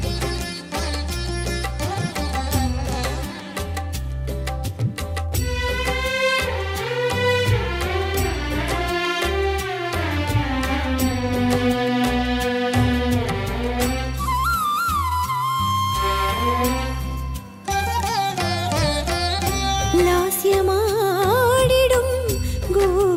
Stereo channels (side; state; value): both; identical; correlation 1.00